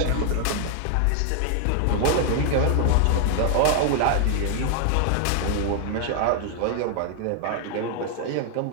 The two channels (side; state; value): both; different; correlation 0.00